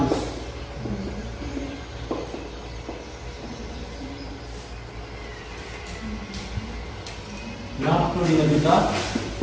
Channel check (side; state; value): both; identical; correlation 1.00